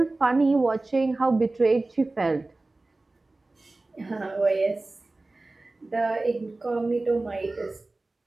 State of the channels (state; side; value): quieter; left; 3.1 dB